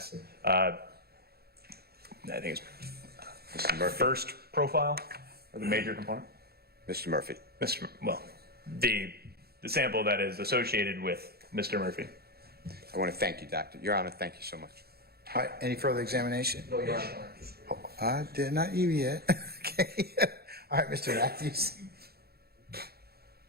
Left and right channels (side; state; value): left; late; 0.46 ms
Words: I think it's Mr. Murphy. first profile, or the major component. Mr. Murphy. Well, the sample that is associated with Mr. Murphy. I want to thank you, Doctor. Your Honor, thank you so much. All right, any further examination? No, Your Honor. Oh, I did not you yet. Okay. All right, Mr. Matthews.